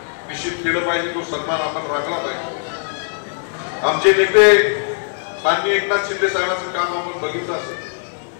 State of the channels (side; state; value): right; silent; digital silence